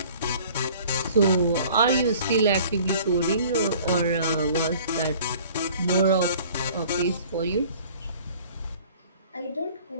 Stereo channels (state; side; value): inverted; both; correlation -0.50